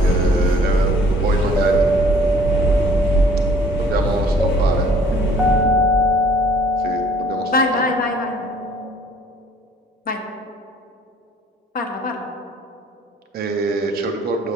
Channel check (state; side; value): normal; both; correlation 0.56